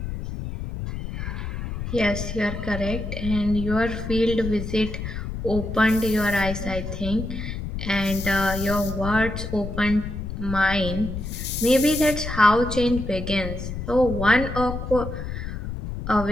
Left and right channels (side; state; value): left; noise; rumble, 6 dB below the sound